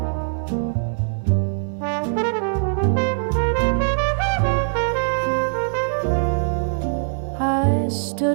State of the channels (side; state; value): left; silent; digital silence